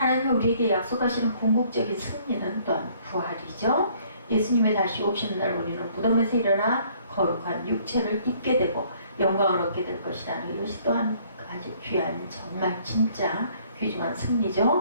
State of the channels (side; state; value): both; inverted; correlation -0.61